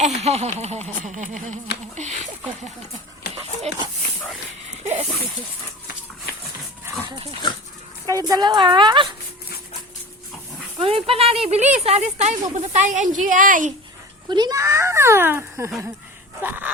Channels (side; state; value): both; normal; correlation 0.35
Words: Kayong dalawa. Kunin pa natin, bilis. Alis tayo, pupunta tayo NGI. Kunin na.